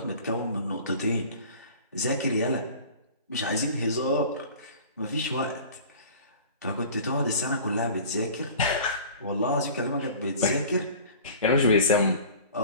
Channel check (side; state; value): both; inverted; correlation -0.42